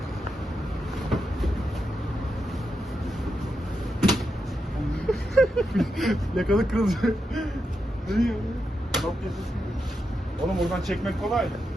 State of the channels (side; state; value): both; normal; correlation 0.86